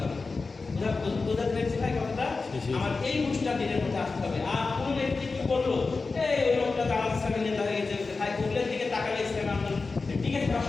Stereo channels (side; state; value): right; quieter; 4.1 dB